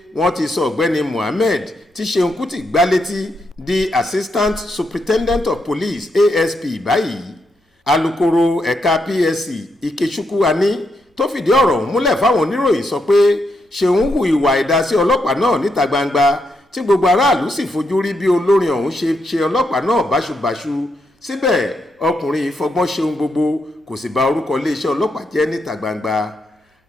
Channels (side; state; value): both; normal; correlation 0.81